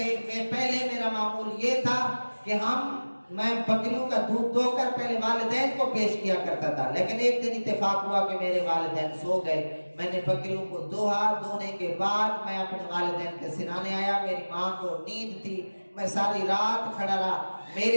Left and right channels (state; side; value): inverted; both; correlation -1.00